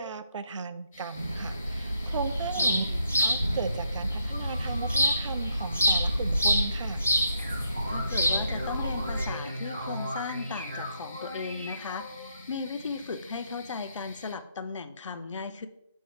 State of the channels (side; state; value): both; inverted; correlation -0.77